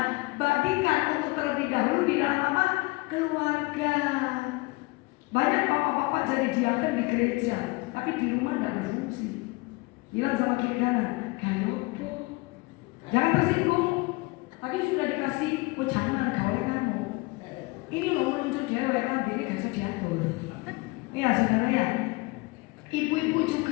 bagikan untuk terlebih dahulu di dalam apa? Keluarga. Banyak bapak-bapak jadi diaken di gereja, tapi di rumah tidak berfungsi. Bilang sama kiri kanan, kayopo, jangan tersinggung. Tadi sudah dikasih jangan gawe kamu. Ini loh menunjuk dewek, nanti ini gak diatur. Ya saudara ya. Ibu-ibu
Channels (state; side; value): quieter; right; 24.4 dB